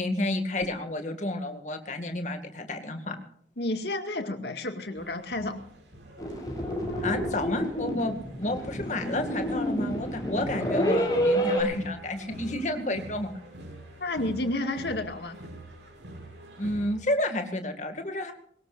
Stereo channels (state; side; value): normal; both; correlation 0.45